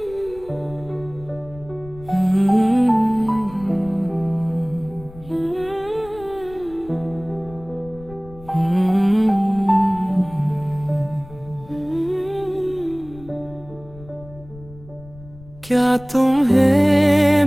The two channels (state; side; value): noise; left; rumble, 20 dB below the sound